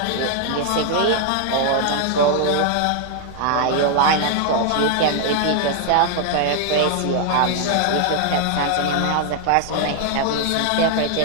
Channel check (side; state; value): both; different; correlation 0.00